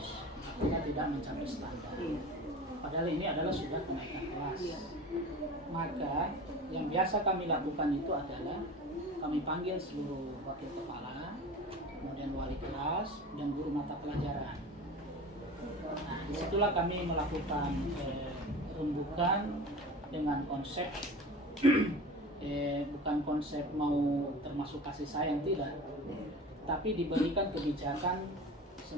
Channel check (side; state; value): both; normal; correlation 0.35